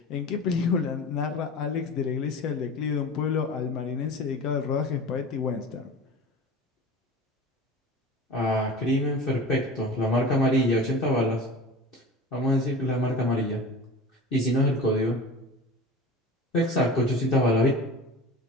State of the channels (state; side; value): normal; both; correlation 0.35